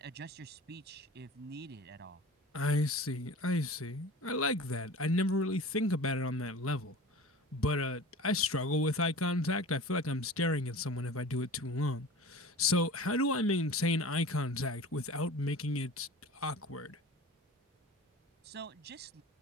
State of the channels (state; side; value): normal; both; correlation 0.38